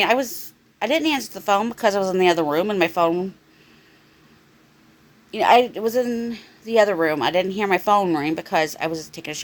I didn't answer the phone because I was in the other room, and my phone, I was in the other room. I didn't hear my phone ring because I was taking a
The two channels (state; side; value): identical; both; correlation 1.00